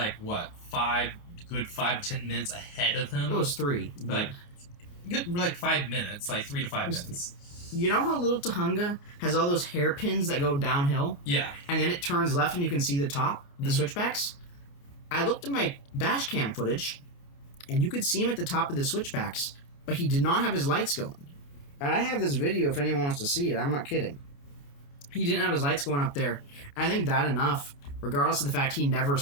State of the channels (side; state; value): right; late; 29 ms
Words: what, 5 to 10 minutes ahead of him? It was 3. But like 5 minutes, like 3 to 5 Just- minutes. you know how Little Tahunga has all those hairpins that go downhill? Yeah. And then it turns left and you can see the top, the Mhm. switchbacks? I looked at my dash cam footage, and you could see him at the top of the switchbacks, but he did not have his lights going. And I have this video if anyone wants to see it. I'm not kidding. He didn't have his lights going up there. I think that enough, regardless of the fact he never